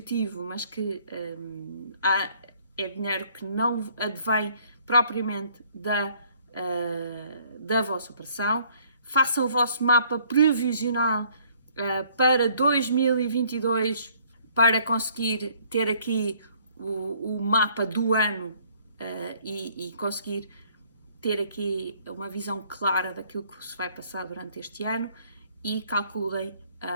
mas que é dinheiro que não advém propriamente da vossa operação. Façam o vosso mapa previsional para 2022, para conseguir ter aqui o mapa do ano e conseguir ter aqui uma visão clara daquilo que se vai passar durante este ano, e calculem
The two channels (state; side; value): inverted; both; correlation -0.61